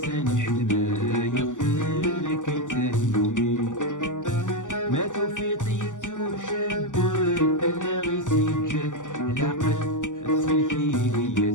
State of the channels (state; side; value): late; right; 0.87 ms